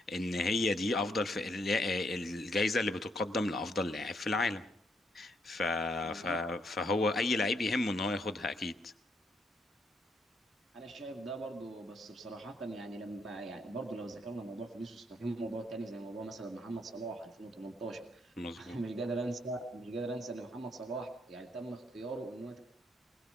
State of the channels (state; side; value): normal; both; correlation 0.75